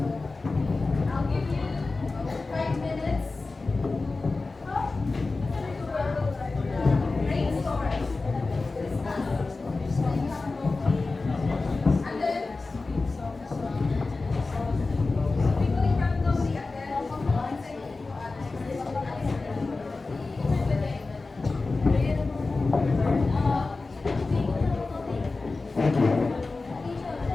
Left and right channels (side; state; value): right; quieter; 3.7 dB